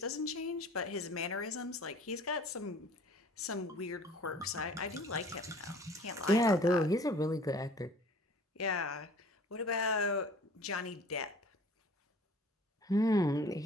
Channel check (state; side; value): normal; both; correlation 0.49